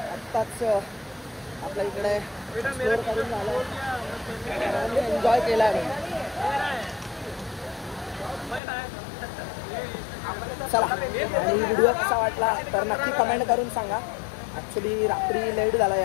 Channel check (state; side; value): drops out; right; at 8.6 s